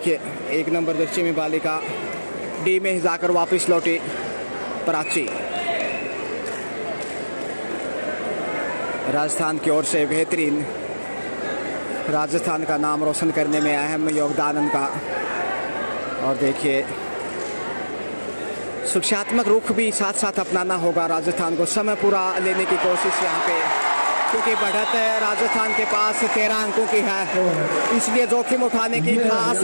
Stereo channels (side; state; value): both; inverted; correlation -1.00